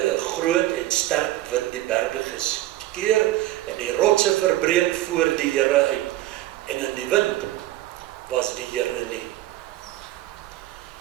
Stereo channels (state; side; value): quieter; left; 15.3 dB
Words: groot en sterk wind die berge geskeur, en die rotse verbreek voor die Here uit. En in die wind was die Here nie.